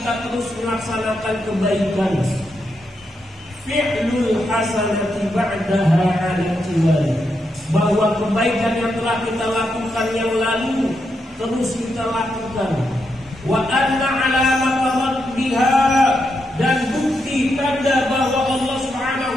terus melaksanakan kebaikan. Fi'lul hasanati ba'daha 'ala tiwali, bahwa kebaikan yang telah kita lakukan yang lalu terus kita lakukan. Wa anna 'alamata raddiha, dan bukti tanda bahwa Allah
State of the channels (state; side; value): normal; both; correlation 0.83